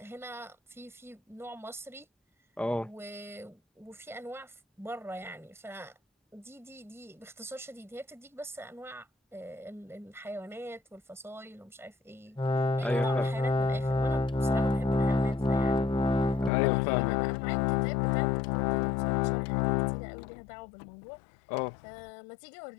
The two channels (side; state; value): right; drops out; at 16.5 s